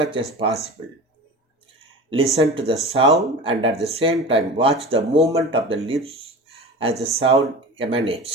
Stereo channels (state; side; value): normal; both; correlation 0.34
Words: as possible. Listen to the sound and at the same time watch the movement of the lips as the sound